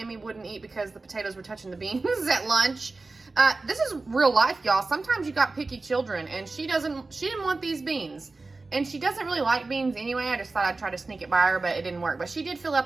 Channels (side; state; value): left; quieter; 3.5 dB